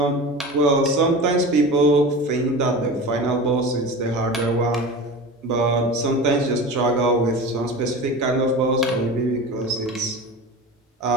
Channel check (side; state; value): both; normal; correlation 0.31